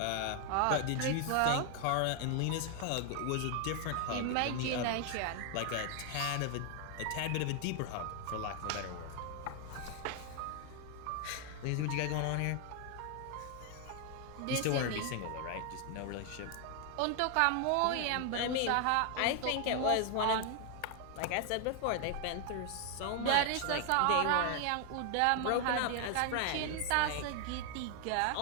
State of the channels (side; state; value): both; different; correlation 0.00